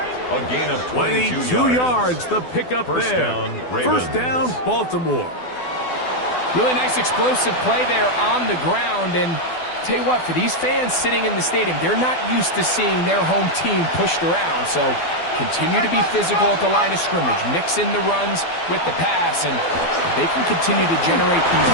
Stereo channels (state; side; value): late; right; 12 ms